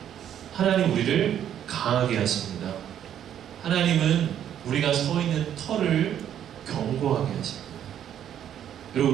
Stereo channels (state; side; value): quieter; left; 10.1 dB